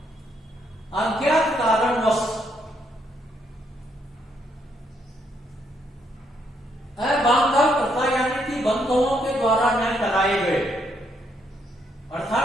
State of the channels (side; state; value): both; normal; correlation 0.74